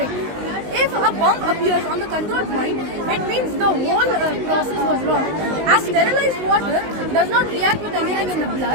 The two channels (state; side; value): late; left; 19 ms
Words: If a bump appears on the control point, it means the whole process was wrong. As sterilized water does not react with anything in the